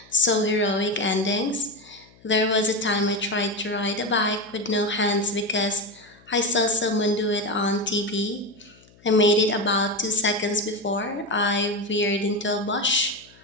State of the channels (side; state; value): left; noise; hum, 28 dB below the sound